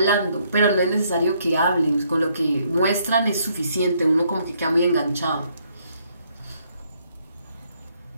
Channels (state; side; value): inverted; both; correlation -0.70